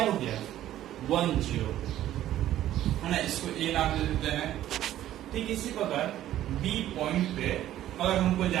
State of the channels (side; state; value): left; quieter; 12.9 dB